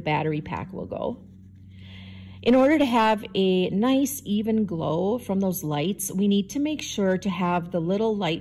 pack will go. In order to have a nice even glow from those lights, we need to make sure to have the little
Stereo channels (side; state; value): both; identical; correlation 1.00